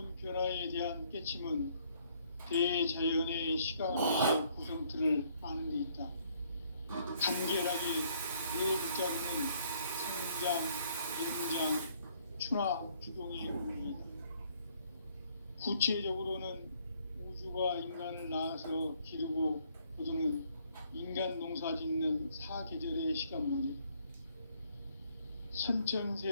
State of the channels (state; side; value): inverted; both; correlation -0.66